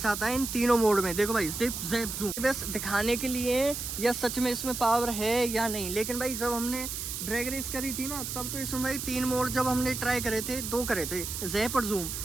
आता है इन तीनों मोड में। देखो भाई जिप जैप जूम बस दिखाने के लिए या सच में इसमें पावर है या नहीं। लेकिन भाई जब हमने ड्रैग रेस करी थी ना, तब तो इसमें भाई 3 मोड जब हमने ट्राई करे थे, 2 करे थे, जैप और जूम,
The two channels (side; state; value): right; noise; hiss, 5 dB below the sound